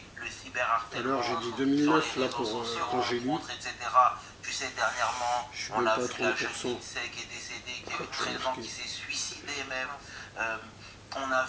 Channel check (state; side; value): identical; both; correlation 1.00